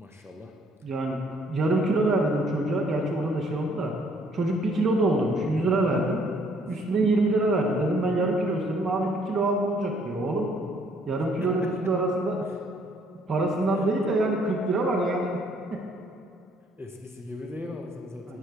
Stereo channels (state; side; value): normal; both; correlation 0.64